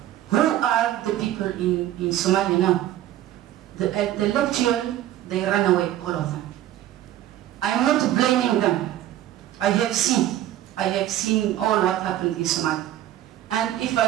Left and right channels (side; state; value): left; quieter; 12.9 dB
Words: who are the people in Somalia now? The intellectual, they run away, all of them. I'm not blaming them. I have seen all what happened in Somalia. And if